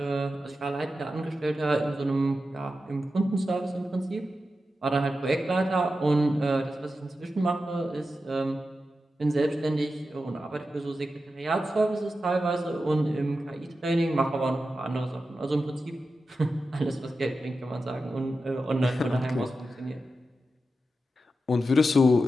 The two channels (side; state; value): both; normal; correlation 0.91